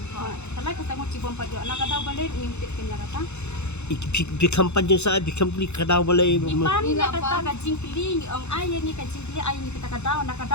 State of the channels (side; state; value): right; late; 0.81 ms